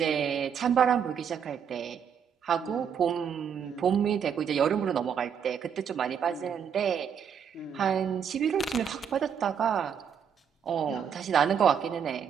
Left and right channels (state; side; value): quieter; left; 7.7 dB